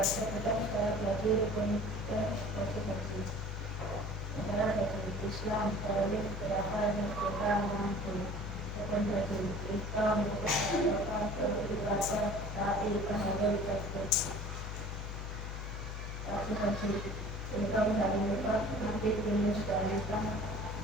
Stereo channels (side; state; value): left; noise; hum, 6 dB below the sound